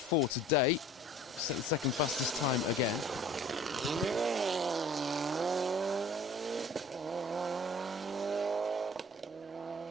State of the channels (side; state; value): both; normal; correlation 0.48